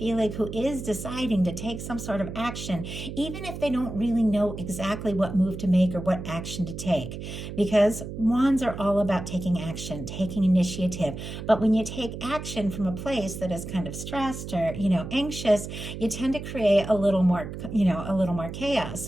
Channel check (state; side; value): noise; right; hum, 8 dB below the sound